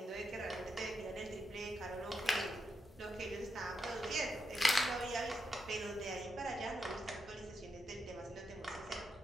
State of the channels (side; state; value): both; normal; correlation 0.83